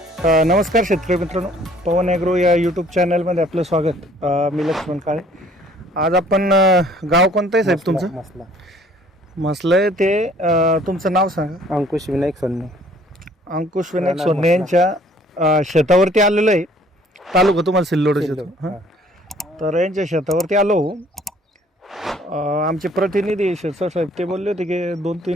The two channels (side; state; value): both; normal; correlation 0.57